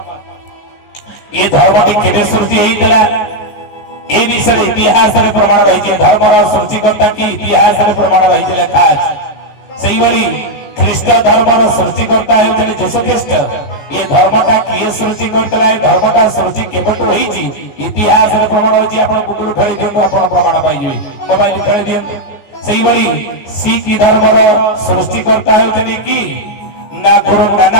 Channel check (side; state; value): right; late; 14 ms